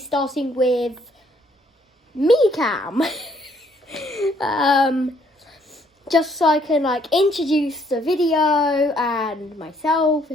with me cam. Just so I can introduce the video and myself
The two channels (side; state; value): both; normal; correlation 0.66